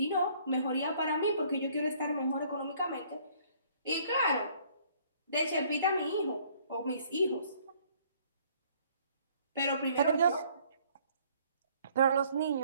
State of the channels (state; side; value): inverted; both; correlation -0.60